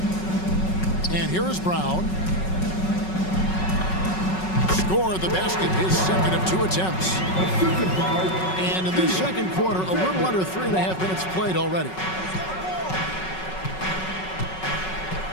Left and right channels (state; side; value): late; right; 5.4 ms